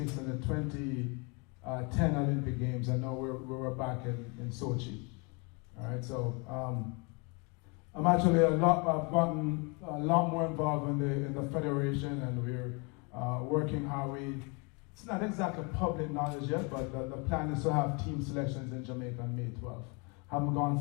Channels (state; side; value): quieter; right; 31.8 dB